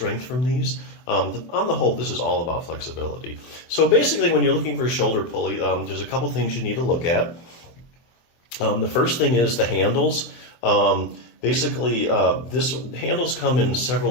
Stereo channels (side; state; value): right; late; 23 ms